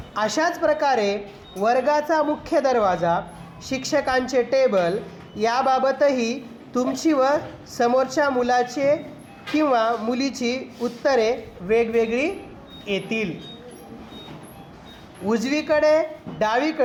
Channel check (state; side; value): identical; both; correlation 1.00